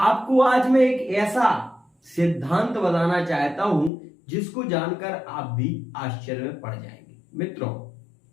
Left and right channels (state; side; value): drops out; right; at 3.9 s